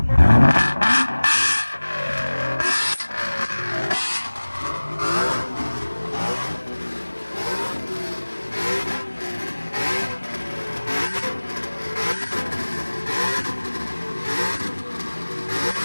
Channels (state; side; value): inverted; both; correlation -1.00